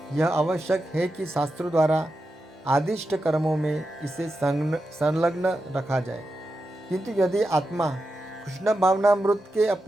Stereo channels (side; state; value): both; normal; correlation 0.89